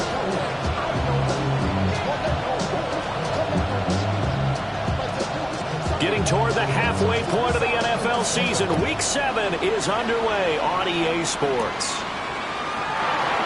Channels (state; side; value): identical; both; correlation 1.00